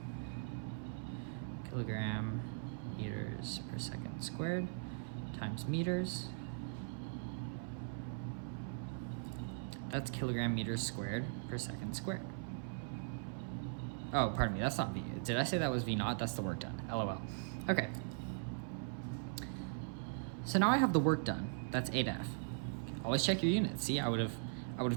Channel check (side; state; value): left; silent; 51 dB below the other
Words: kilogram meters per second squared times meters. That's kilogram meters squared per second squared. Oh, pardon me, that's not V. Did I say that was V naught? That's the work done. LOL. Okay. So now I have the work done. That's 8F. Always check your units. See, I would have